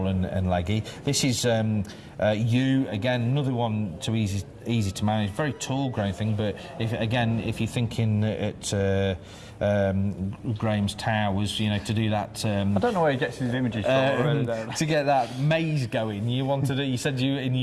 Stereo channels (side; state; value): both; identical; correlation 1.00